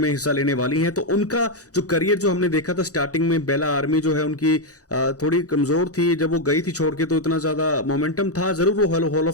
हिस्सा लेने वाली हैं। तो उनका जो करियर जो हमने देखा था स्टार्टिंग में, बेला आर्मी जो है उनकी थोड़ी कमजोर थी, जब वो गई थी छोड़ के तो इतना ज्यादा मोमेंट मोमेंटम था, जरूर वो हॉल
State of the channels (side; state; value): right; late; 0.67 ms